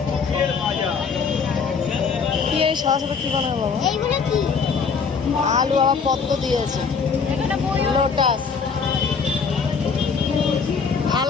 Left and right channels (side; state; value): right; quieter; 5.6 dB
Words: কি এই সাদা সাদা কি বানাবো বাবা? আলু আবার পদ্ম দিয়েছে, লোটাস,